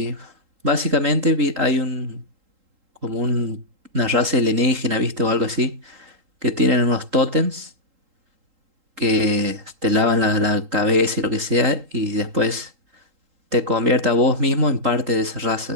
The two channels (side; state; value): left; late; 3.8 ms